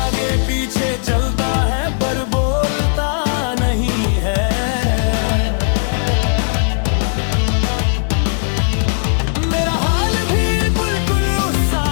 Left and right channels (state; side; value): silent; right; digital silence